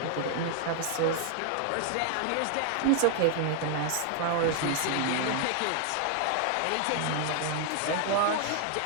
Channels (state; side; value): different; both; correlation 0.00